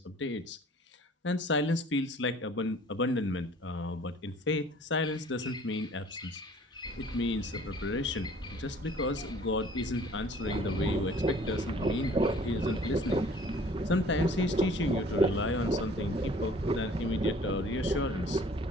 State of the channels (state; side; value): normal; both; correlation 0.52